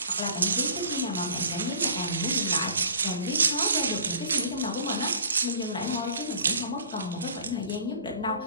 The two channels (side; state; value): both; inverted; correlation -0.46